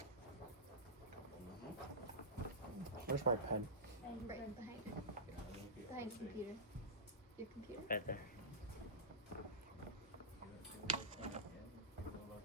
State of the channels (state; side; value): normal; both; correlation -0.16